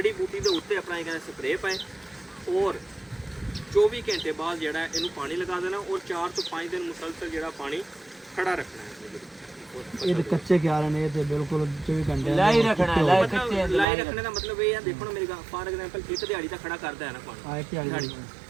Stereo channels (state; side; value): drops out; left; at 13.9 s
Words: ਬੂਟੀ ਦੇ ਉੱਤੇ ਆਪਣਾ ਇਹ ਕਹਿੰਦੇ ਸਪਰੇਅ ਪਾਏ ਔਰ 24 ਘੰਟੇ ਬਾਅਦ ਜਿਹੜਾ ਇਹਨੂੰ ਪਾਣੀ ਲਗਾ ਦੇਣਾ ਔਰ 4 ਤੋਂ 5 ਦਿਨ ਮੁਸਲਸਲ ਜਿਹੜਾ ਪਾਣੀ ਖੜਾ ਰੱਖਣਾ ਹੈ ਇਹ ਤੇ ਕੱਚੇ ਕਿਆਰੇ ਨੇ ਤੇ ਬਿਲਕੁਲ 24 ਘੰਟੇ लाई रखना है लाई ਮਤਲਬ कच्चे ਲਾਈ ਰੱਖਣੇ ਦਾ ਮਤਲਬ ਇਹ ਹੈ ਦੇਖੋ ਨਾ ਮੇਰੀ ਗੱਲ ਫਾਰ ਐਗਜ਼ਾਮਪਲ ਇੱਕ ਦਿਹਾੜੀ ਤਾਂ ਖੜਾ ਕਰਦਾ ਹੈ ਨਾ ਪਾਣੀ ਆਏ ਕਿ ਦਿਹਾੜੀ